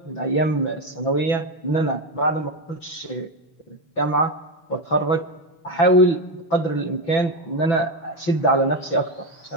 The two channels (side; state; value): right; late; 6.0 ms